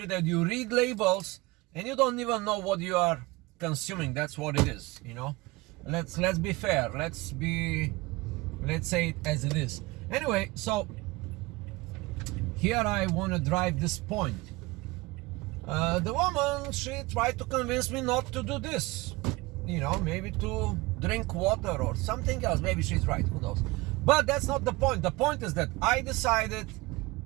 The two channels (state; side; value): quieter; left; 22.4 dB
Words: that you read labels and you don't even know what you are consuming. That's what it is, you know. Let's be fair. Let's say it as it is. Anyway, so here I want to drive this point. The woman, she tried to convince me not to do this, you know, maybe to drink water or something else. Maybe she's right, who knows. But that's not the point. The point is that I decided,